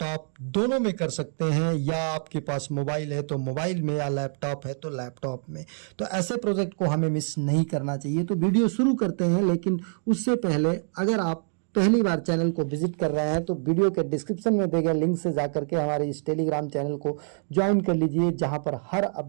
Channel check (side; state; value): left; silent; digital silence